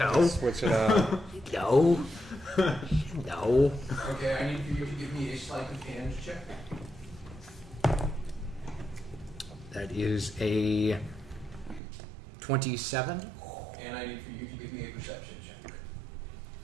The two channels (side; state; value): left; drops out; at 11.8 s